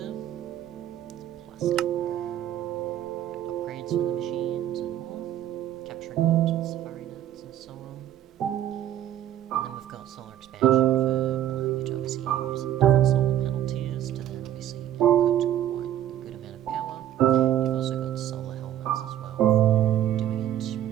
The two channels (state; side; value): quieter; left; 11.6 dB